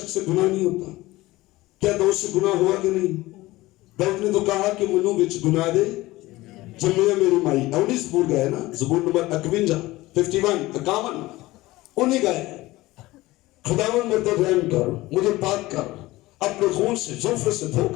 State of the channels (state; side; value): quieter; right; 18.8 dB